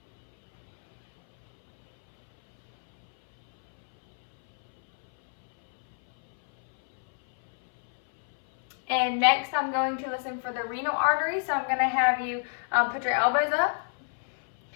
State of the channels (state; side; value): silent; right; 60 dB below the other